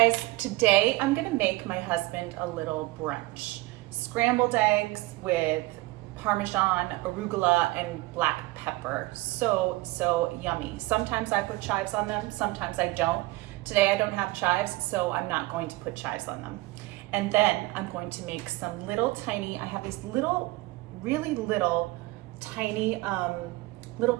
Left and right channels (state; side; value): quieter; left; 20.8 dB